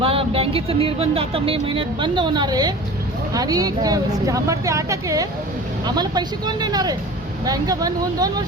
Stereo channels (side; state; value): both; normal; correlation 0.39